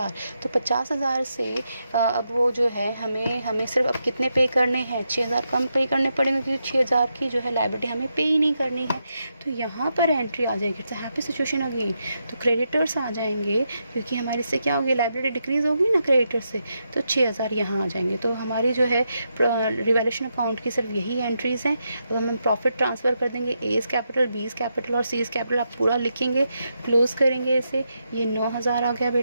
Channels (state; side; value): inverted; both; correlation -0.83